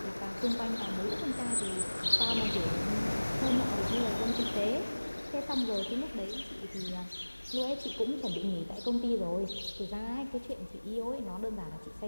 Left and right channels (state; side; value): inverted; both; correlation -1.00